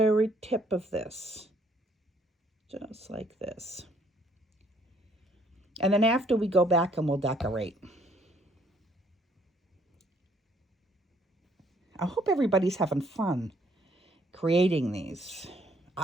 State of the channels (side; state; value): both; normal; correlation 0.65